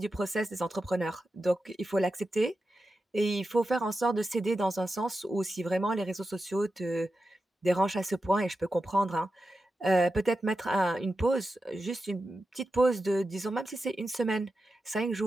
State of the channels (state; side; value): normal; both; correlation 0.91